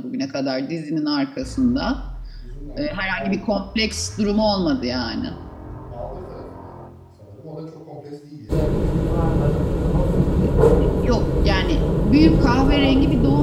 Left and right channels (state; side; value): identical; both; correlation 1.00